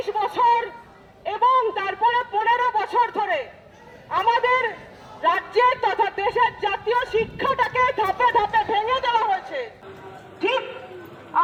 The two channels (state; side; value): identical; both; correlation 1.00